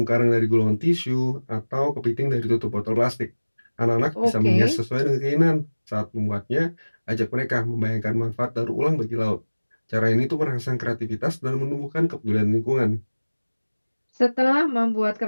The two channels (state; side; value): inverted; both; correlation -1.00